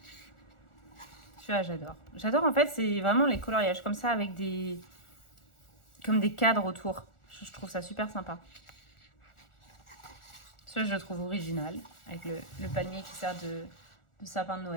Celui-là, j'adore. J'adore, en fait, c'est vraiment les coloriages comme ça avec comme des cadres autour. Je trouve ça super sympa. Celui-là, je le trouve original, avec le palmier qui sert de sapin de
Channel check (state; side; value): late; right; 1.4 ms